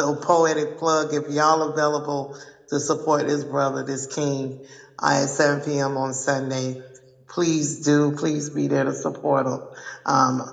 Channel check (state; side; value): identical; both; correlation 1.00